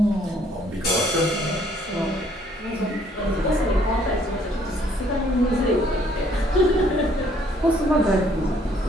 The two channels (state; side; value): normal; both; correlation 0.63